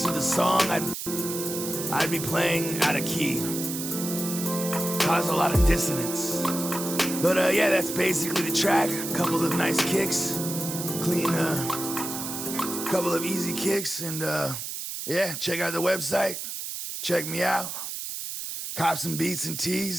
of the song, I'd be playing out of key. Cause a lot of dissonance. But yeah, that's basically the track. A couple of nice kicks, clean, couple of easy kicks, and yeah, check out the website. Check me out. Cop some beats and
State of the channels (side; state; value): right; noise; hiss, 6 dB below the sound